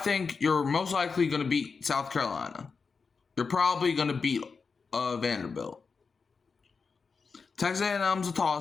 you're most likely going to beat South Carolina. You're probably going to beat Vanderbilt. Texas A&M's a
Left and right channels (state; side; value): quieter; right; 5.0 dB